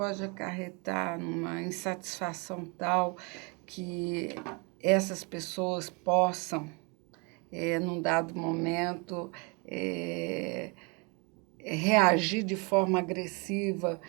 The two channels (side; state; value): left; quieter; 30.9 dB